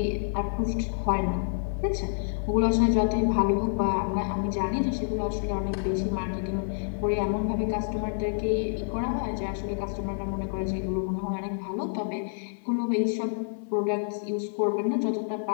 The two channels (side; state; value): right; silent; digital silence